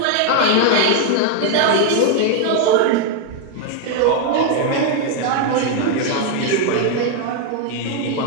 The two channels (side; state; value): both; different; correlation 0.01